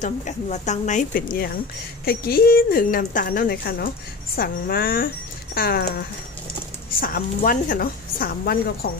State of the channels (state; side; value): quieter; right; 4.0 dB